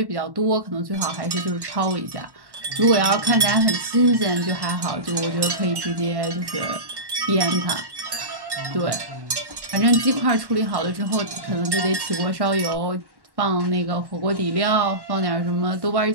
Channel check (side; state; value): left; late; 1.1 ms